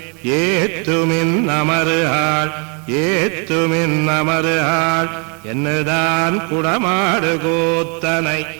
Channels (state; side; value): quieter; left; 36.0 dB